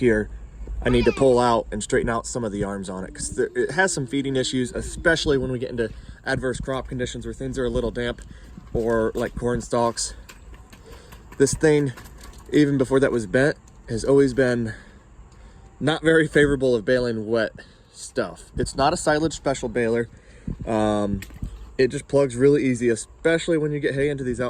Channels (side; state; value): both; identical; correlation 1.00